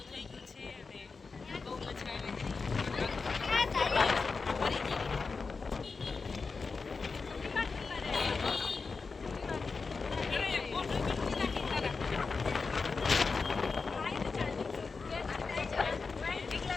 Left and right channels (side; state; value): right; quieter; 4.5 dB